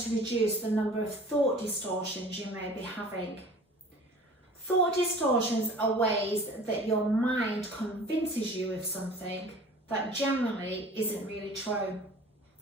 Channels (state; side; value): normal; both; correlation 0.44